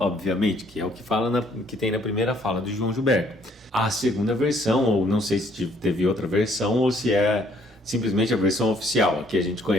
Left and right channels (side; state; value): both; normal; correlation 0.63